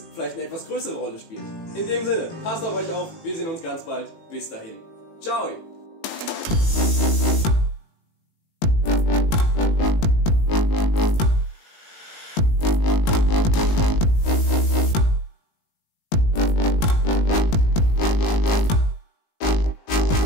vielleicht eine etwas größere Rolle spielt. In dem Sinne, passt auf euch auf, wir sehen uns ganz bald. Bis dahin. Ciao!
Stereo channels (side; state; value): right; late; 18 ms